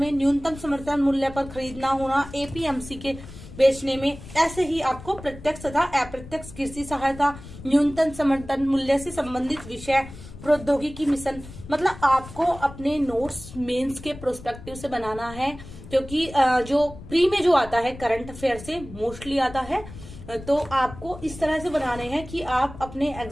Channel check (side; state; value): left; noise; rumble, 15 dB below the sound